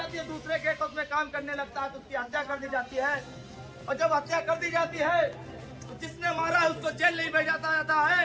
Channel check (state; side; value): identical; both; correlation 1.00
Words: है। दूसरे गेट हाउस में काम करने लगता है तो उसकी हत्या कर दी जाती है। और जब हत्या कर दी जाती है तो जिसने मारा है उसको जेल नहीं भेजा जाता है,